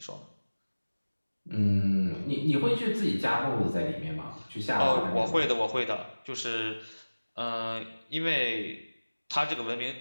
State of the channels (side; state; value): both; inverted; correlation -1.00